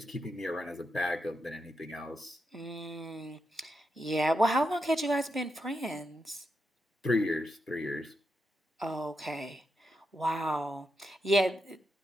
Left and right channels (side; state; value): both; normal; correlation 0.85